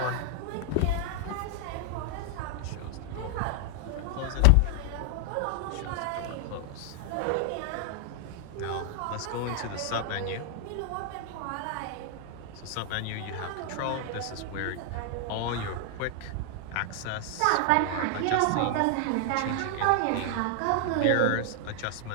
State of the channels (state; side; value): different; both; correlation 0.00